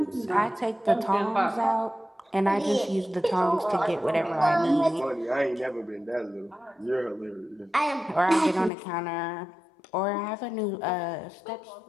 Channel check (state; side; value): drops out; right; at 8.7 s